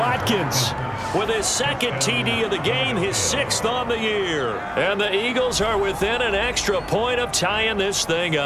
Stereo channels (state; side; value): identical; both; correlation 1.00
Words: with his second TD of the game, his 6th on the year. And the Eagles are within an extra point of tying this thing